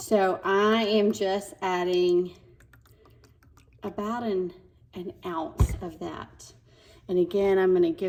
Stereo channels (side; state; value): both; identical; correlation 1.00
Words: I am just adding about an ounce of that. And again, I'm gonna